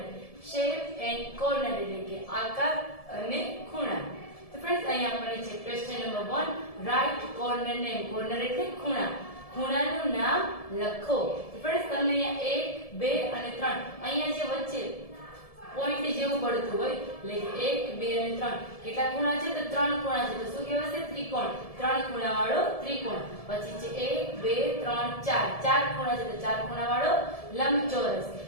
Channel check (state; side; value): late; right; 1.7 ms